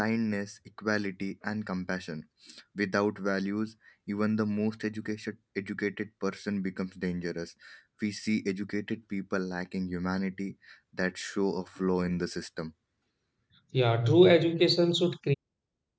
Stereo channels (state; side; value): identical; both; correlation 1.00